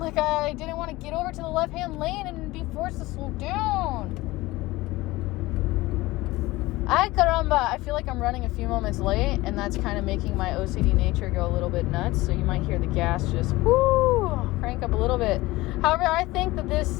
like I didn't want to get over to the left-hand lane and be forced to slow down. Ay, caramba. I feel like I'm running a few moments late, and that's kind of making my OCD nature go a little bit nuts. So you might hear the gas just crank up a little bit. However, I think that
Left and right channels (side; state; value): right; quieter; 19.6 dB